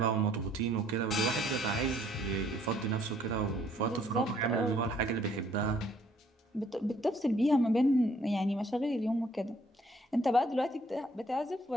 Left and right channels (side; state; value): both; normal; correlation 0.63